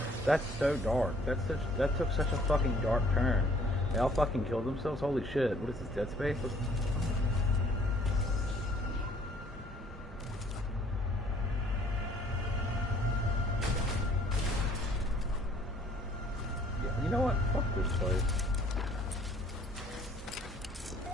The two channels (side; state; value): both; normal; correlation 0.59